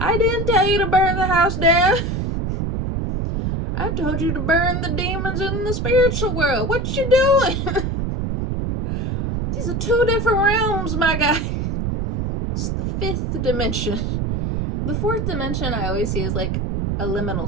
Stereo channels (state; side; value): noise; right; rumble, 1 dB below the sound